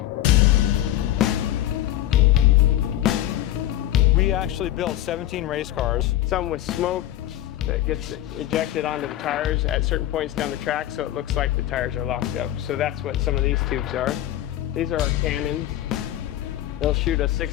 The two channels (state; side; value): quieter; right; 13.3 dB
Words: We actually built 17 race cars. Some with smoke that gets ejected onto the tires at certain points down the track, so it looks like the tires are locked up. So that's what some of these tubes are. These are our cannons. They'll shoot a